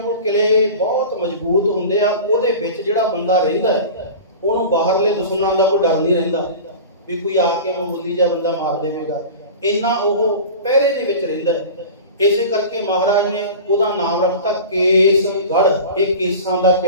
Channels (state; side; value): inverted; both; correlation -0.34